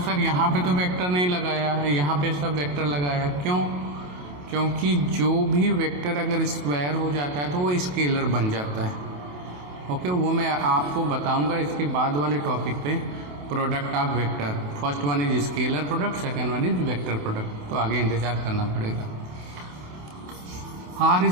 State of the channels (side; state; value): left; late; 28 ms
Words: यहाँ पे तो वेक्टर नहीं लगाया है, यहाँ पे सब वेक्टर लगाया, क्यों? क्योंकि जो भी वेक्टर अगर स्क्वायर हो जाता है तो वो स्केलर बन जाता है। ओके, वो मैं आपको बताऊंगा इसके बाद वाले टॉपिक पे, product of vector. First one is scalar product, second one is vector product, तो आगे इंतजार करना पड़ेगा। R